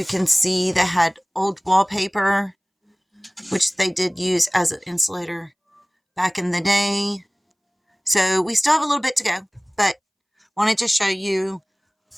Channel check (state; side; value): identical; both; correlation 1.00